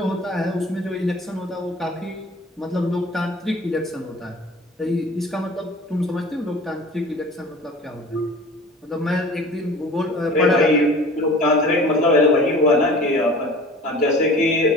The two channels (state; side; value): normal; both; correlation 0.43